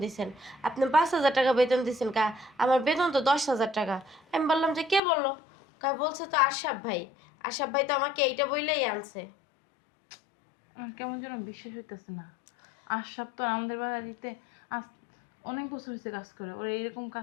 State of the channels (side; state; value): right; drops out; at 5.0 s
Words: দিছেন। আপনি 5,000 টাকা বেতন দিছেন কা? আমার বেতন তো 10,000 টাকা। আমি বললাম যে কে বললো? বলছে তো আশরাফ ভাই। আশরাফ ভাই তো আমাকে এইটা বইলেই আনছে। আমার কেমন যেন বিশ্বাস হইতেছে না। আশরাফ তো আমাদের বাড়িতে আজ অনেক বছর হয়েছে কাজ করে, ওর এইরকম